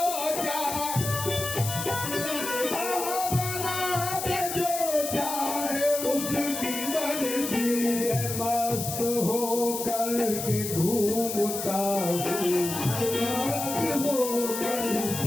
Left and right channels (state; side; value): noise; left; hiss, 5 dB below the sound